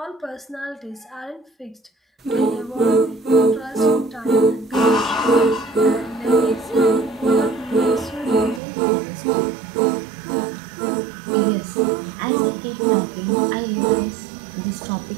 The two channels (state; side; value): drops out; left; at 8.6 s